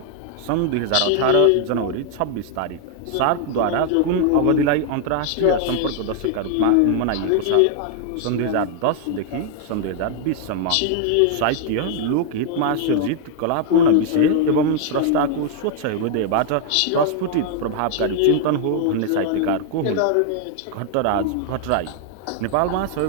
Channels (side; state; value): both; different; correlation 0.00